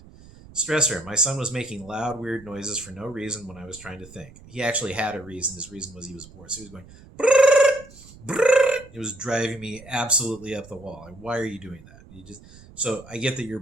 Stressor, my son was making loud, weird noises for no reason when I was trying to think. He actually had a reason. His reason was he was bored. So he was going, brrr, brrr. It was driving me absolutely up the wall. Like, why are you doing that? So I get that you're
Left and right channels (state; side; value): noise; right; rumble, 21 dB below the sound